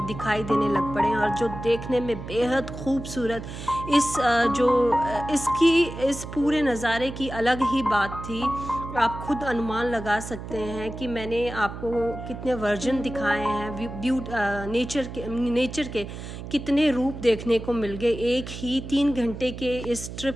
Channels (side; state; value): right; noise; hum, 10 dB below the sound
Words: दिखाई देने लग पड़े और जो देखने में बेहद खूबसूरत इस पूरे नज़ारे की अलग ही बात थी। आप खुद अनुमान लगा सकते हैं कि मैंने आपको कितने वर्जन दिखाए हैं नेचर के कितने रूप देखने को मिल गए एक ही 3 घंटे के इस